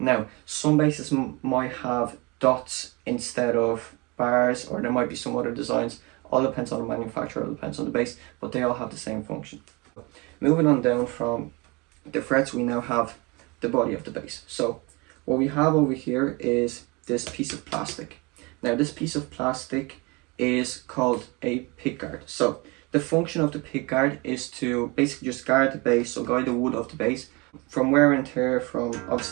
some basses might have dots instead of bars, or there might be some other designs. All depends on the manufacturer, all depends on the bass, but they all have the same function. Moving on down from the frets, we now have the body of the bass. So what we have over here is this piece of plastic. Now this piece of plastic is called a pickguard. So the function of the pickguard is to basically just guard the bass, so guide the wood of the bass from wear and tear, from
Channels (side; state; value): left; quieter; 26.9 dB